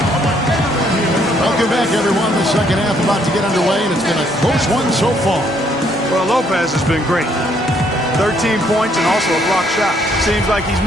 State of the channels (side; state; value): both; normal; correlation 0.68